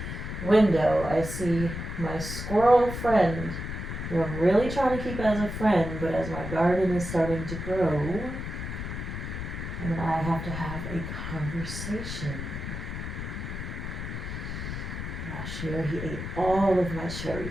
window, I see my squirrel friend, who I'm really trying to keep as a friend, but as my garden is starting to grow, and I have to have a conversation. Last year he ate all of my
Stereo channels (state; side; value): noise; left; rumble, 6 dB below the sound